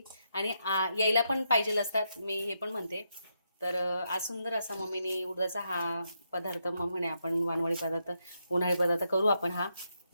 आणि यायला पण पाहिजे असतात, मी हे पण म्हणते. तर आज सुंदर असा मम्मीने उडदाचा हा पदार्थ, मग म्हणे आपण वानवळी पदार्थ, उन्हाळी पदार्थ करू आपण हा.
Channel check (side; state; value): both; inverted; correlation -0.81